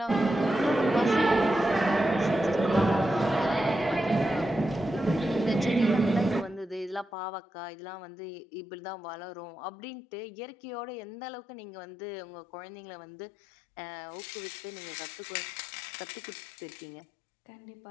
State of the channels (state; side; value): drops out; right; at 7.1 s